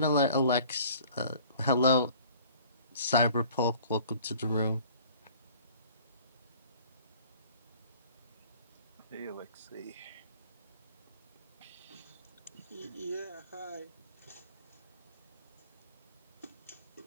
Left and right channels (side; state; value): both; inverted; correlation -0.51